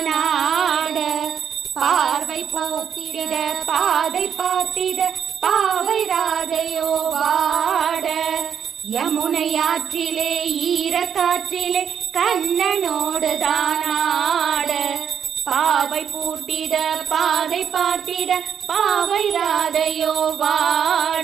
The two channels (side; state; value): left; quieter; 8.1 dB